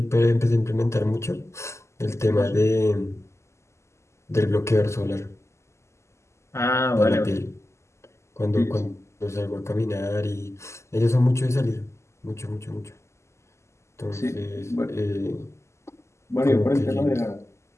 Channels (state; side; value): late; right; 0.13 ms